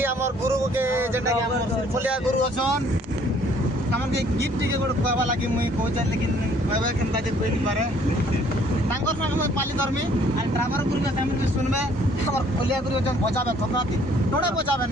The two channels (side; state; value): both; normal; correlation 0.60